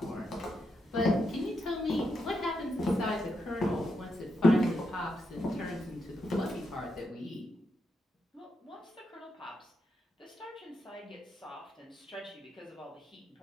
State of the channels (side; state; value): both; normal; correlation 0.83